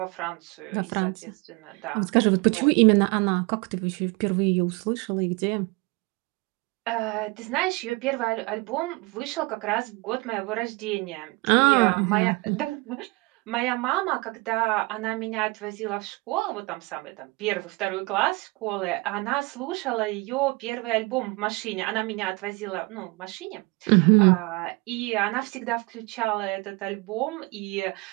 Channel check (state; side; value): quieter; left; 25.7 dB